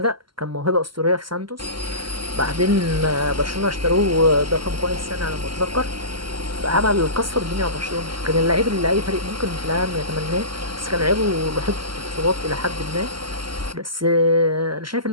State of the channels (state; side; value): late; left; 0.74 ms